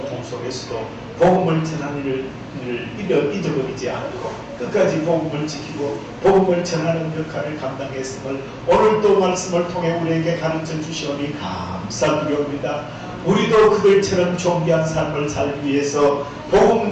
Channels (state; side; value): identical; both; correlation 1.00